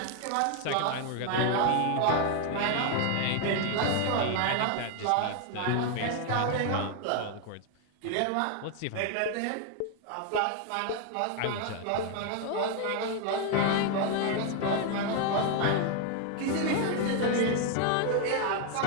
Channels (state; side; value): different; both; correlation 0.00